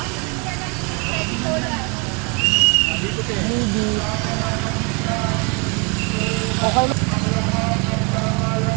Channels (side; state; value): left; quieter; 31.7 dB